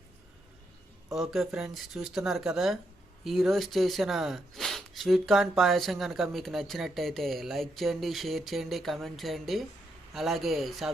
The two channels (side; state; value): both; normal; correlation 0.80